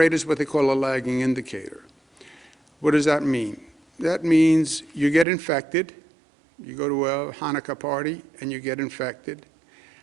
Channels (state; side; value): drops out; left; at 5.2 s